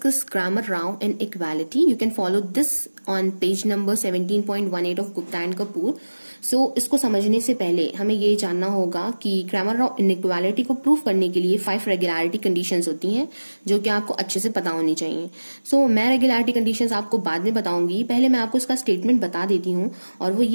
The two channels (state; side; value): inverted; both; correlation -1.00